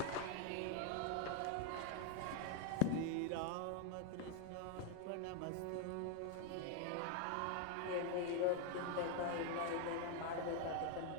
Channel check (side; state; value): both; different; correlation 0.01